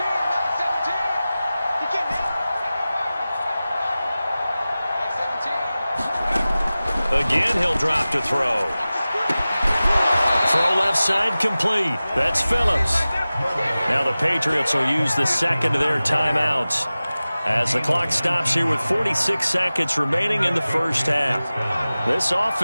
Again, he'll drop to throw. Throw left side complete. That's Phillips. Now the Patriots will use the second of their timeouts as the clock stops here with 46 seconds remaining in the first half. This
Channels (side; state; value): both; inverted; correlation -0.97